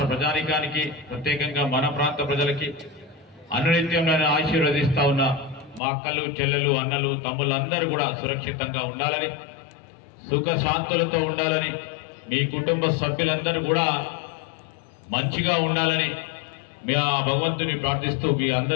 ప్రజానికానికి ప్రత్యేకంగా మన ప్రాంత ప్రజలకి అనునిత్యం ఆశీర్వదిస్తా ఉన్న మా అక్కలు చెల్లెలు అన్నలు తమ్ముళ్ళు అందరూ కూడా సురక్షితంగా ఉండాలని సుఖ శాంతులతో ఉండాలని మీ కుటుంబ సభ్యులందరూ కూడా మంచిగా ఉండాలని మీ ఆ భగవంతుని ప్రార్థిస్తూ మీ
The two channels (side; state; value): right; drops out; at 5.8 s